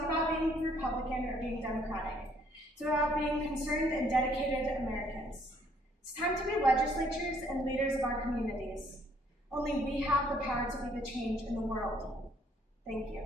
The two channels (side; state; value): both; normal; correlation 0.64